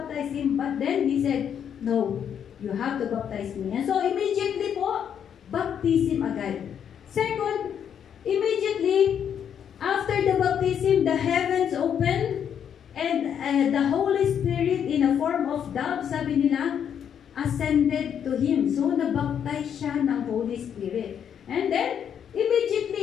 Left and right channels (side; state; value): right; quieter; 8.5 dB